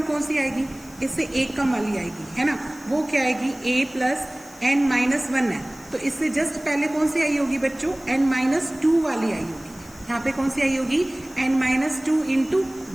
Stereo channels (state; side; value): noise; left; hiss, 23 dB below the sound